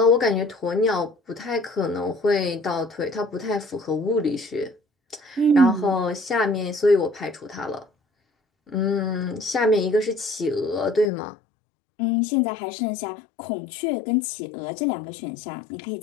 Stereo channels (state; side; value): drops out; right; at 11.1 s